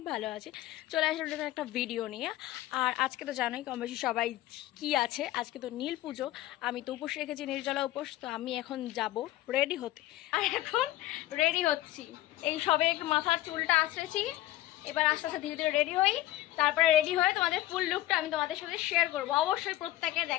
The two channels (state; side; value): quieter; right; 15.6 dB